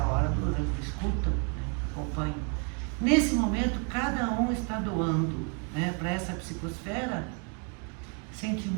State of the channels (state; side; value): quieter; left; 36.0 dB